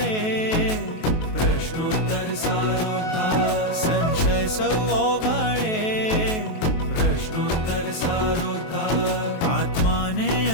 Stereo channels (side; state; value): right; late; 23 ms